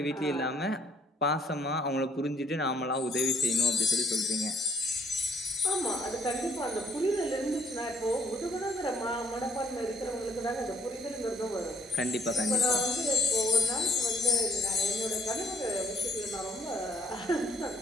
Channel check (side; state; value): both; normal; correlation 0.65